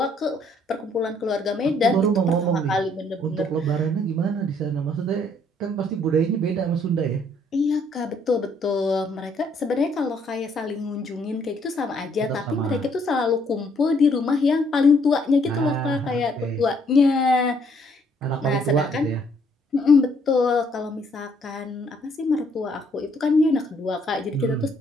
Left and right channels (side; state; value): both; normal; correlation 0.67